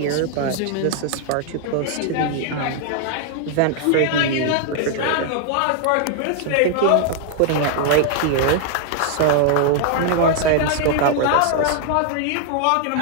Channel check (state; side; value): different; both; correlation 0.00